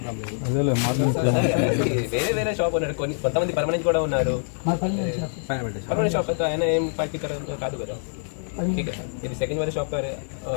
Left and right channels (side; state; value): right; silent; digital silence